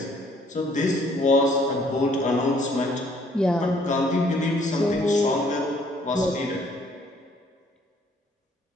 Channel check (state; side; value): normal; both; correlation 0.62